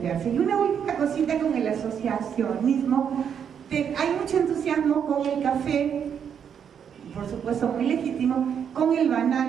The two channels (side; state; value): left; quieter; 7.9 dB